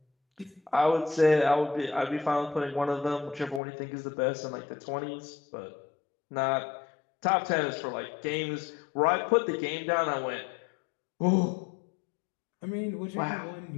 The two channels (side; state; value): right; drops out; at 3.6 s